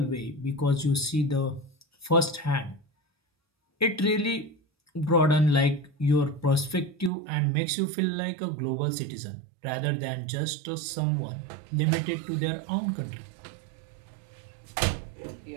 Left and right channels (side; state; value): left; drops out; at 7.1 s